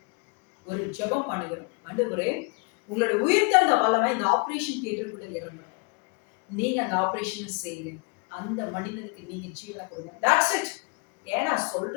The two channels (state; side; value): quieter; right; 30.8 dB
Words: ஒரு ஜெபம் பண்ணுகிறோம். ஆண்டவரே, உங்களோட உயிர்த்தெழுந்த வல்லமை இந்த ஆபரேஷன் தியேட்டருக்குள்ள இறங்கணும். நீங்க அந்த ஆபரேஷனை செய்யுங்க. அந்த மனிதனுக்கு நீங்க ஜீவனை கொடுங்க. That's it. ஏன்னா